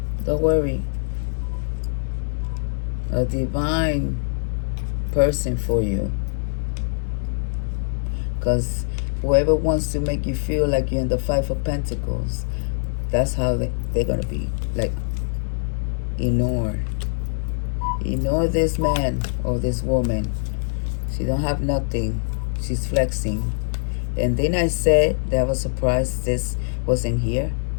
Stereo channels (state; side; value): silent; right; 63 dB below the other